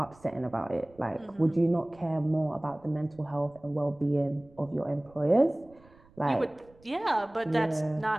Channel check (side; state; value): right; noise; rumble, 27 dB below the sound